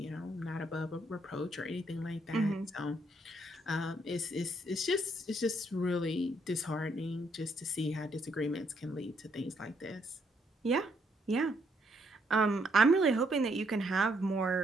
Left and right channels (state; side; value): normal; both; correlation 0.72